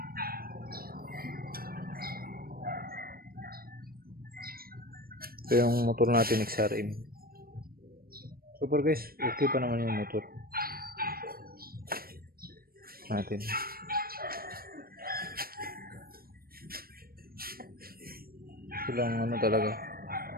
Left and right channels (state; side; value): late; left; 0.43 ms